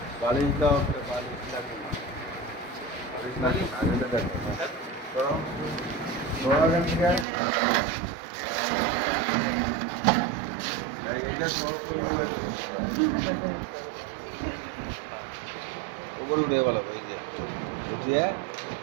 বালিশ দাও বালিশ লাগবে না বালিশ লাগবে না এটা দেখো করো উপরে উঠে বলো ওই যে উঠিয়ে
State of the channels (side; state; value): left; drops out; at 7.2 s